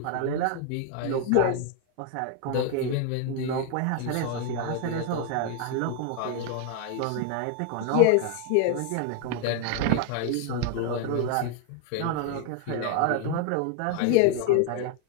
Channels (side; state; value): both; different; correlation 0.01